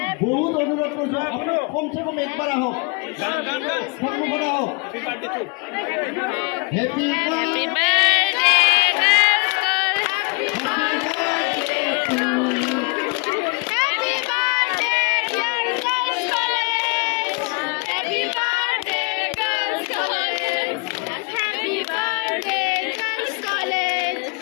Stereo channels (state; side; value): quieter; right; 30.0 dB